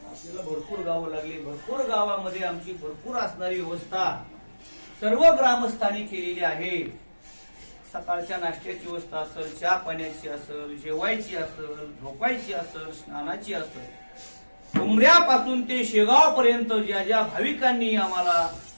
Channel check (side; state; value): both; inverted; correlation -1.00